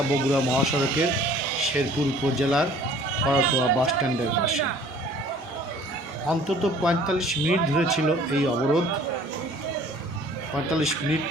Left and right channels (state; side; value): normal; both; correlation 0.52